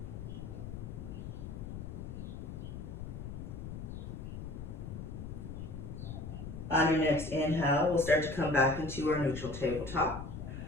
On your next inhale, we'll start to come back into our neutral tabletop.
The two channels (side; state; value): left; noise; rumble, 7 dB below the sound